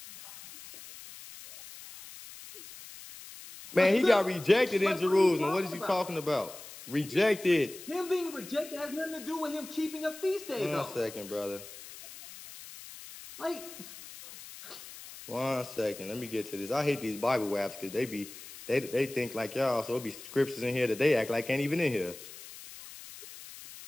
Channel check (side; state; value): left; noise; hiss, 15 dB below the sound